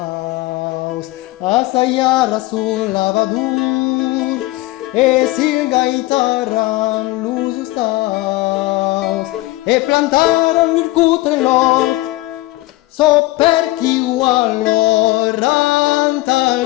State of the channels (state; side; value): quieter; right; 19.2 dB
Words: assaiara sul lavadur e sil gaitaran lusus staus e plantaran vircutre lor so per chi allor antalcias.